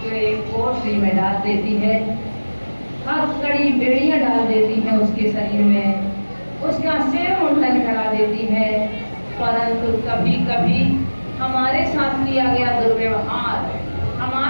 कोठरी में डाल देती है, हथकड़ी बेड़ियां डाल देती है उसके शरीर में, उसका सिर मुंडन करा देती है। परंतु कभी कभी हमारे साथ किया गया दुर्व्यवहार,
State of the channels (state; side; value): inverted; both; correlation -1.00